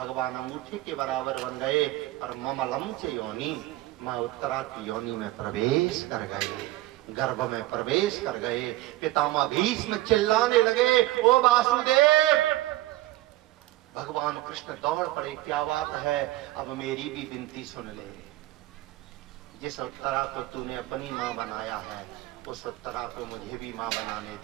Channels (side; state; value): left; quieter; 17.1 dB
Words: अंगूठे के बराबर बन गए और ममलम च योनि, मैं उत्तरा की योनि में प्रवेश कर गए, गर्भ में प्रवेश कर गए। पितामह भीष्म चिल्लाने लगे, ओ वासुदेव! भगवान कृष्ण दौड़ पड़े, क्या बात है? अब मेरी भी विनती सुन ले। जिस उत्तरा को तूने अपनी मां बनाया है उस उत्तरा को मुझे भी माँ बनाने